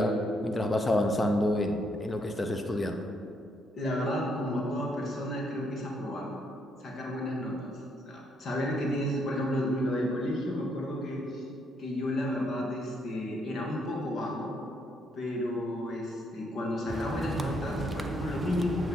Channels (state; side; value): normal; both; correlation 0.74